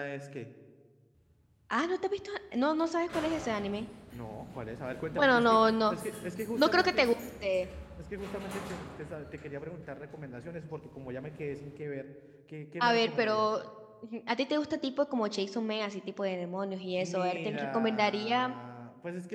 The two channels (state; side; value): identical; both; correlation 1.00